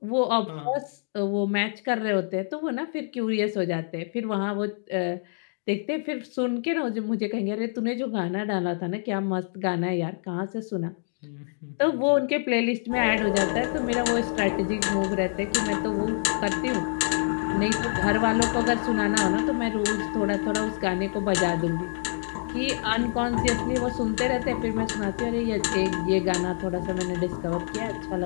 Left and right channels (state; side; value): silent; right; digital silence